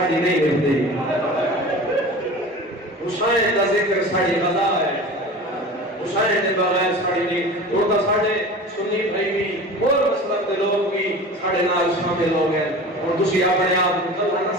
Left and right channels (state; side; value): normal; both; correlation 0.36